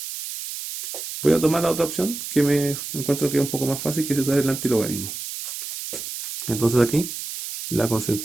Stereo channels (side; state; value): right; noise; hiss, 7 dB below the sound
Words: Voy a tomar la otra opción que me encuentro que es un poco más fácil, que es usar el antilogarismo. Entonces aquí la